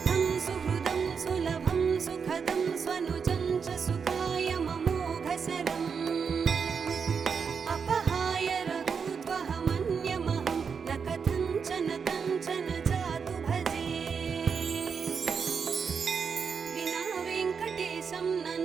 సుహృదం సులభం సుఖదం స్వనుజం చ సుఖాయ మమోఘశరం అపహాయ రఘూత్వహమన్యమహం న కథంచన కంచన జాతు భజే. వినా వెంకటేశం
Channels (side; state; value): left; quieter; 6.1 dB